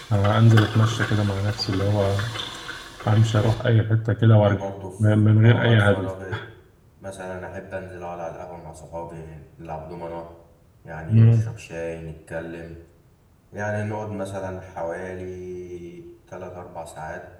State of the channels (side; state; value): both; identical; correlation 1.00